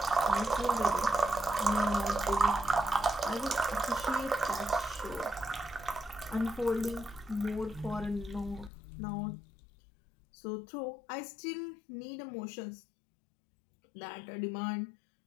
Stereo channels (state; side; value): drops out; right; at 8.7 s